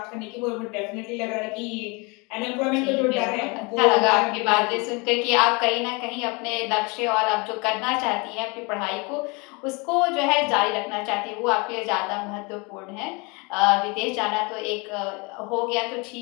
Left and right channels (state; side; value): quieter; right; 28.9 dB